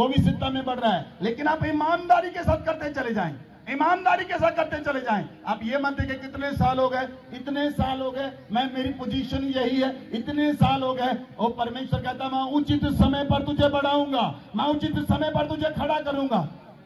भी सिद्धता में बढ़ रहा है। लेकिन आप ईमानदारी के साथ करते चले जाएं, ईमानदारी के साथ करते चले जाएं। आप ये मत देखें कितने साल हो गए, इतने साल हो गए, मैं मेरी पोजीशन यही है, इतने साल हो गए। और परमेश्वर कहता मैं उचित समय पर तुझे बढ़ाऊंगा, मैं उचित समय पर तुझे खड़ा करूंगा।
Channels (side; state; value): both; identical; correlation 1.00